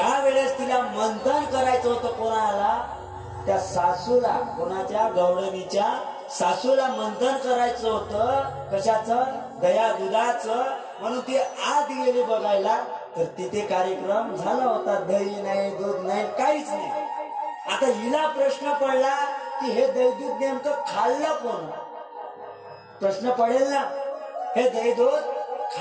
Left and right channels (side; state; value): both; identical; correlation 1.00